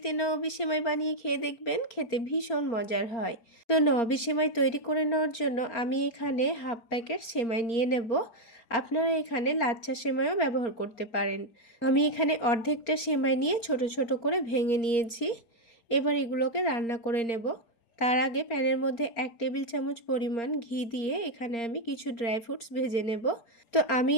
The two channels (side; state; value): right; late; 4.3 ms